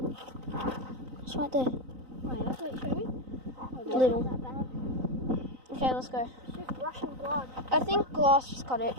It's right there. Wait, show me. Little. Not that bad. Okay, let's go. It's just Russian blood. I think glass just cut it.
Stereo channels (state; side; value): late; left; 3.9 ms